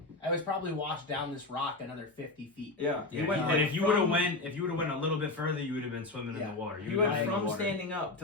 I was probably washed down this rock another 50 feet. Yeah. Yeah, He went and like if you would have from- went a little bit further, you would have been swimming in Yeah. the water. He would've went been in the from water. standing up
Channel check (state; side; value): quieter; right; 3.1 dB